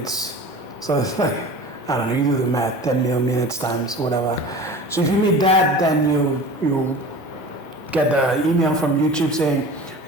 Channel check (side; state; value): right; late; 1.5 ms